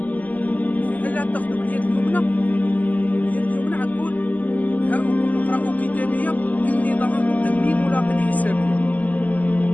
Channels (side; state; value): right; late; 0.078 ms